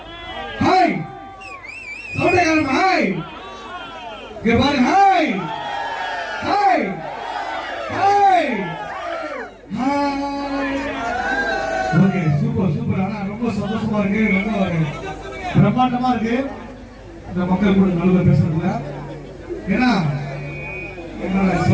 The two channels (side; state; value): both; identical; correlation 1.00